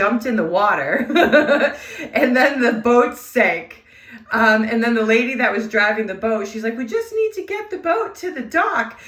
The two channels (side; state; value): both; identical; correlation 1.00